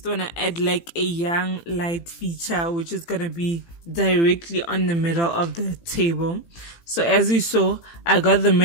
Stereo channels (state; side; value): late; right; 18 ms